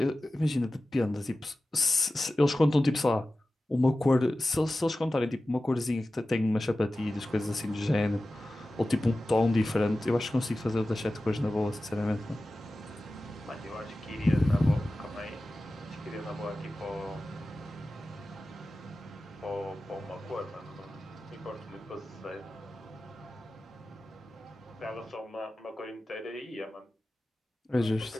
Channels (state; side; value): normal; both; correlation 0.95